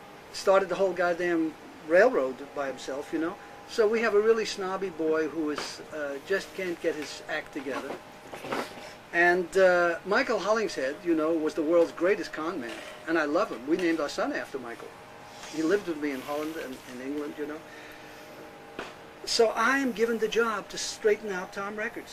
started the whole goddamn railroad by himself, you know. So we have a really snobby boy who is just can't get his act together. And Michael Hollingshead, you know, was the world's greatest con man, and I love him. We named our son after Michael. He lived with me in Holland and in England, you know. So I am given the job to straighten out Tom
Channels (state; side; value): identical; both; correlation 1.00